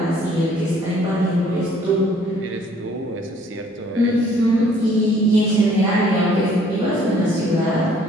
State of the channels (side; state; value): both; normal; correlation 0.59